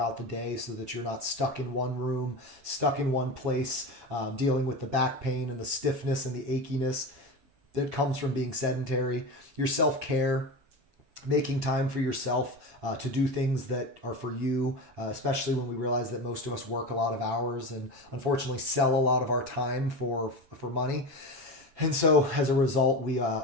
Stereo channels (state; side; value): late; left; 7.0 ms